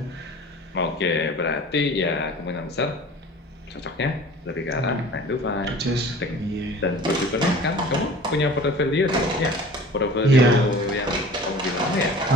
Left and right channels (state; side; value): normal; both; correlation 0.43